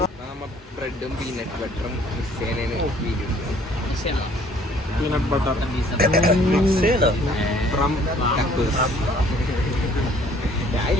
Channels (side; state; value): both; normal; correlation 0.58